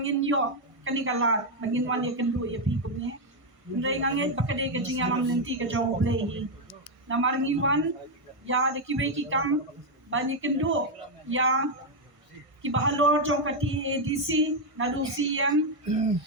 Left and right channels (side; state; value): left; late; 1.5 ms